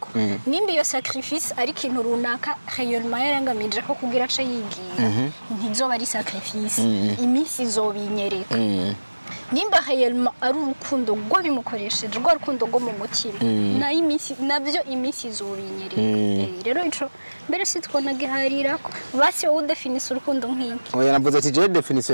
nimba iyo sacrifice ari kintu runaka réellement yarangamije ko kugira ace yigiye ntizoba ari sacrifice iminsi izobinyereka nimba réellement ari urukundo rwo bimukoresheje rwo rukundo rwo mu mutima na iminsi nabyo iminsi izobinyereka rero ico mbere sitwona giharira ko basi wowe definise urukundo nk'iki oya navuze ati je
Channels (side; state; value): both; inverted; correlation -1.00